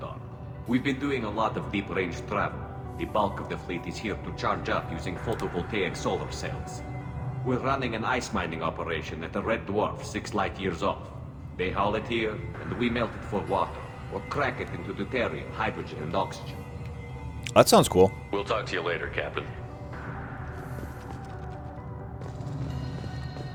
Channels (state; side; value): identical; both; correlation 1.00